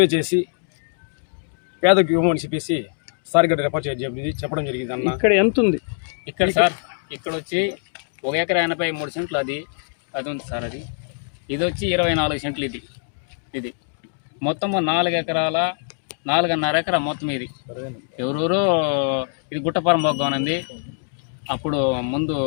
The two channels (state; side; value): silent; right; digital silence